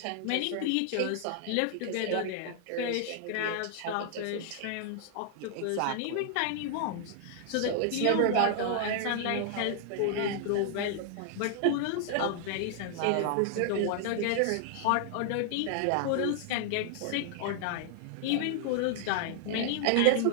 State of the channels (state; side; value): different; both; correlation 0.00